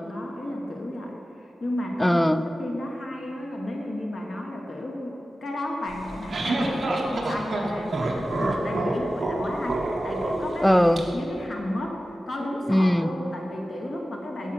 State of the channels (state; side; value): normal; both; correlation 0.95